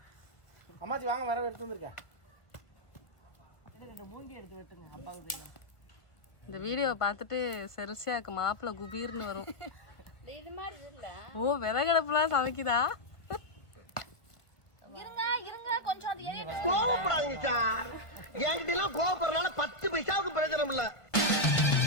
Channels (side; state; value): right; late; 1.5 ms